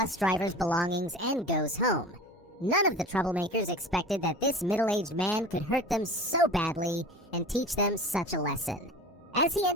driver's belongings and goes home. None of the troublemakers expected that this middle-aged man could hurt them so badly and teach them such a lesson. As he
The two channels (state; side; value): normal; both; correlation 0.37